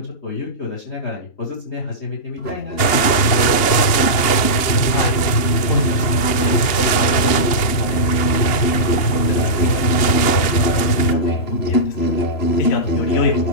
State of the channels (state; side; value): late; right; 2.9 ms